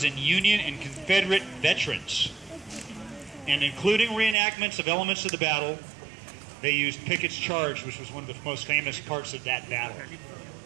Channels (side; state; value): left; drops out; at 4.4 s